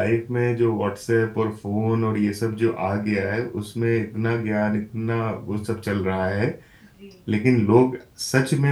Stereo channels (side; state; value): both; identical; correlation 1.00